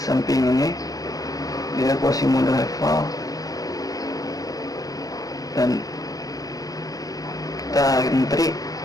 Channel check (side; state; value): right; late; 0.17 ms